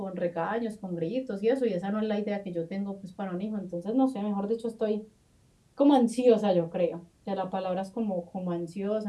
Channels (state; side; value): identical; both; correlation 1.00